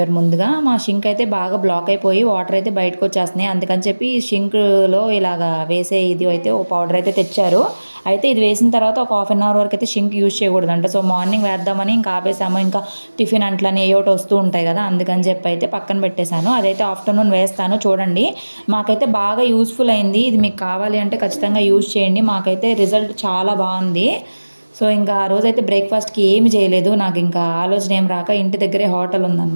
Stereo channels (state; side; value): inverted; both; correlation -1.00